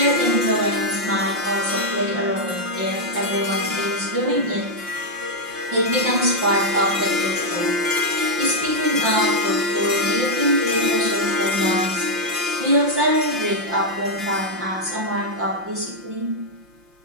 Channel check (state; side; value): late; left; 5.7 ms